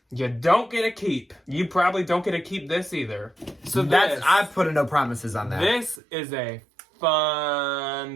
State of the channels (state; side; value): drops out; left; at 6.0 s